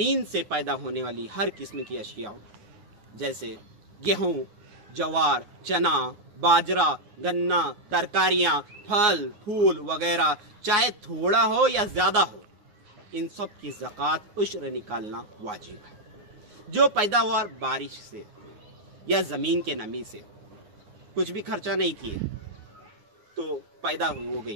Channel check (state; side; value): late; left; 9.6 ms